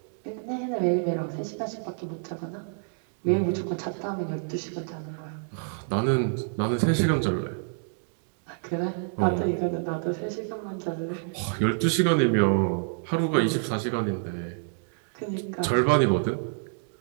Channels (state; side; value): silent; left; 59 dB below the other